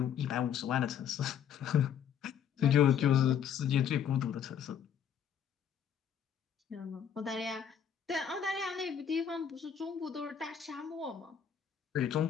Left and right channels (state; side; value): quieter; right; 8.4 dB